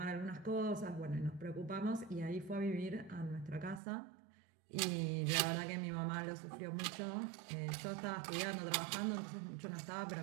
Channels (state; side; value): drops out; left; at 3.8 s